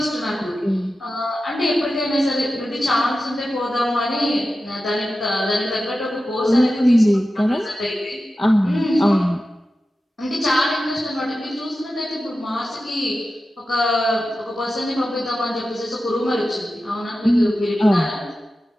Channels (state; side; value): normal; both; correlation 0.93